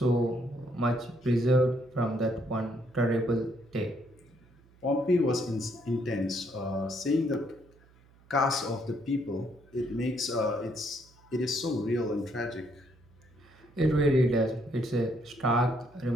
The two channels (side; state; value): right; noise; hum, 28 dB below the sound